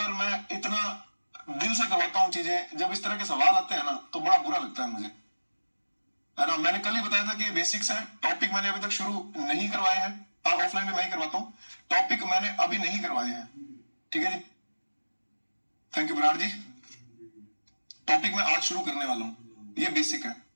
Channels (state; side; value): inverted; both; correlation -1.00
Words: मैं इतना दिल से करवाता हूँ चीजें, जब इस तरह के सवाल आते हैं ना तो बड़ा बुरा लगता है मुझे, है ना। मैंने कल ही बताया था कि बेसिक्स है, टॉपिक मैंने अभी तक शुरू नहीं करवाए हैं। ऑफलाइन में मैं ही करवाता हूँ, टॉपिक मैंने अभी नहीं करवाए हैं, ठीक है जी। Thank you Virat ji. Topic मैं आज शुरू करने वाला हूँ, ये बेसिक है।